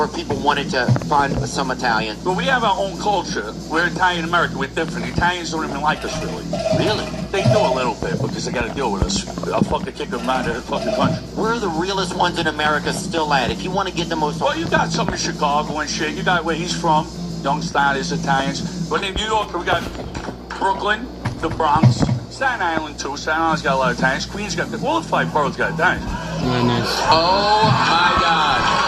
if people wanted to find some Italians? Well, we have our own culture. We're Italian American. We're different. Italians don't even like us, really. Really? They do a little bit because they got to deal with us. I'll fucking kick them out of the fucking country. Where are the realest ones in America still at? If you want to get the most... Well, you got some in Chicago and shit. You got where he's from. Young Stylish Italians. But in New York, we got Brooklyn, the Bronx, Staten Island, too. Staten Island's got a lot of Italians. Queens got... All the 5 boroughs got Italians. Nice. Oh, my God.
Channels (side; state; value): both; identical; correlation 1.00